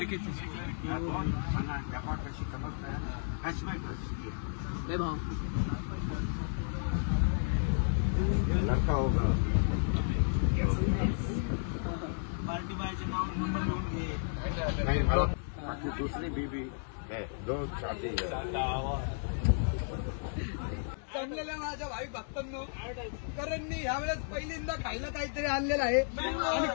व्यापार कशी समजताय, हॅशबॅक कशी भाऊ लड़का होगा. पार्टी बायचे नाव नंबर लिहून घे. नहीं मला बाकी दूसरी बीबी है, दो शादी है. जमलेल्या माझ्या भाई भक्तांनो, करणनी यावेळेस पहिल्यांदा खायला काहीतरी आणलेलं आहे, आणि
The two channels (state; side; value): silent; right; digital silence